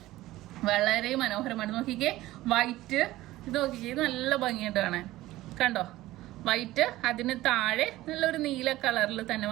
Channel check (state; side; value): quieter; left; 16.7 dB